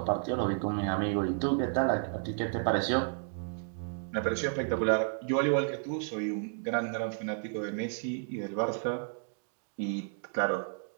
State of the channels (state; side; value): silent; left; digital silence